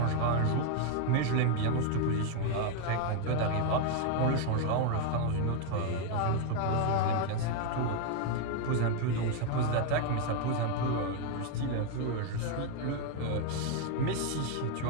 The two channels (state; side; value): different; both; correlation 0.01